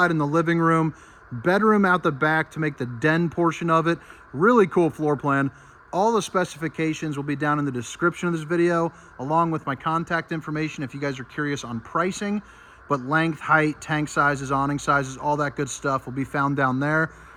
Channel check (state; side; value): identical; both; correlation 1.00